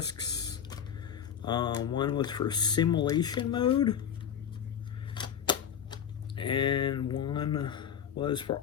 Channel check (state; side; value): quieter; right; 8.4 dB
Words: One was for simulation mode, and one was for